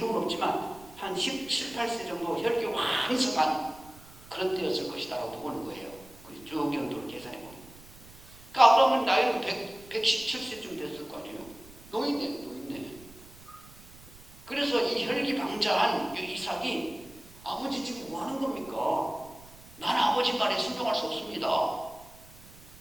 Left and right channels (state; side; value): noise; right; rumble, 21 dB below the sound